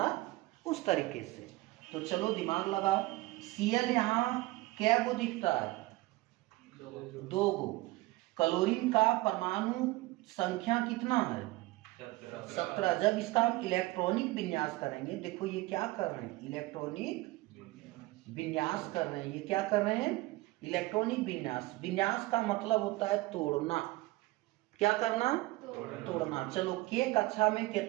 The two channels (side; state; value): left; quieter; 20.1 dB